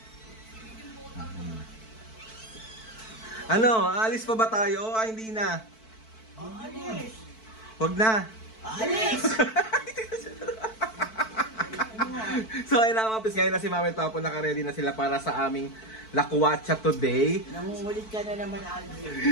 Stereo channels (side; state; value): right; late; 4.5 ms